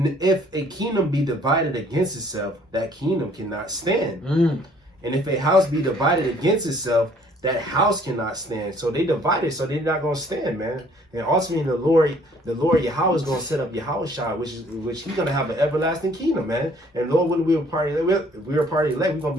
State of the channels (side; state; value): both; normal; correlation 0.59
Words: if a kingdom be divided against itself, that kingdom cannot stand. And if a house be divided against itself, that house cannot stand. So they divided, so they're not going to stand, man. And ultimately, the Lord Yahweh is going to set up Yahushua, which he's going to have an everlasting kingdom, man. And Lord, when we were part of elect, we're going to